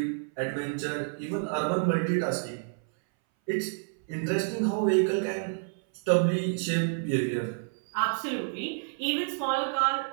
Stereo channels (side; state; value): left; silent; 58 dB below the other